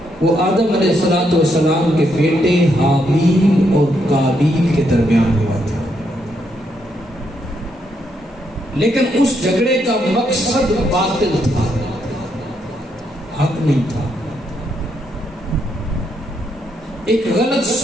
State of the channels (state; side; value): normal; both; correlation 0.77